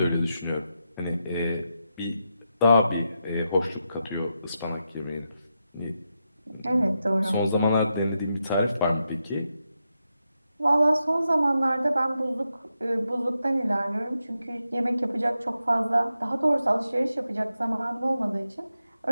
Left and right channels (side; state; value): both; inverted; correlation -0.86